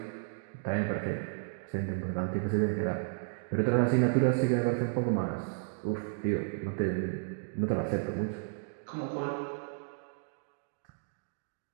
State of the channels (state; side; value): silent; left; digital silence